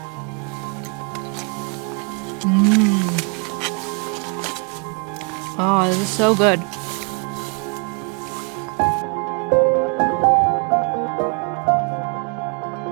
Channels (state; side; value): quieter; left; 36.3 dB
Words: Oh, this is so good.